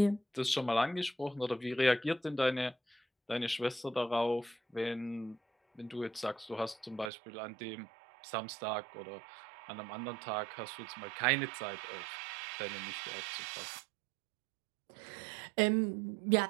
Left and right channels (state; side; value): drops out; left; at 7.1 s